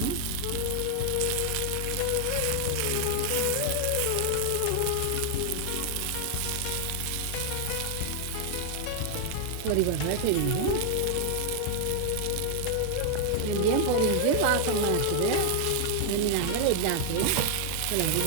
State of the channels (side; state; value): both; different; correlation 0.00